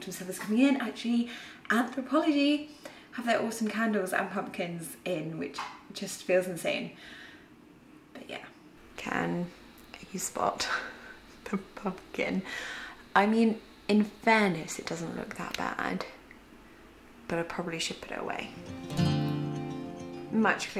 stuff is coming in. Actually, Anthropology have their awesome candles and pumpkins in, which just feels insane. But yeah. Can you spot the pumpkin? I mean, in fairness, it doesn't look that bad, but I probably should put it away. Much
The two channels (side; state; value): both; identical; correlation 1.00